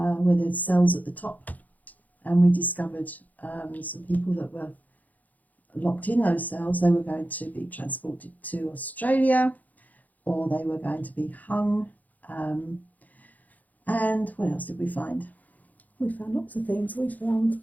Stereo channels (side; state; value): right; late; 0.080 ms